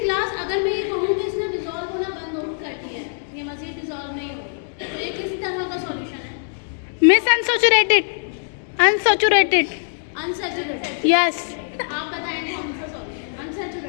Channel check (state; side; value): silent; right; digital silence